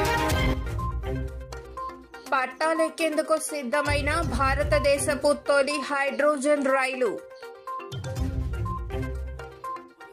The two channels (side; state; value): both; identical; correlation 1.00